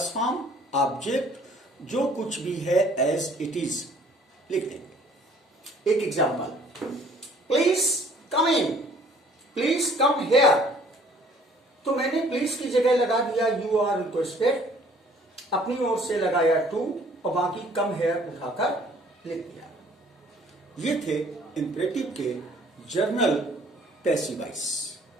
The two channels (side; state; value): both; normal; correlation 0.56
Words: फॉर्म, ऑब्जेक्ट, जो कुछ भी है एज इट इज लिख देंगे। एक example, please come in, please come here, तो मैंने प्लीज की जगह लगा दिया यू आर रिक्वेस्टेड, अपनी ओर से लगाया टू और बाकी कम हेयर उठाकर लिख दिया। ये थे इंपरेटिव के जर्नल पैसिव वॉइस।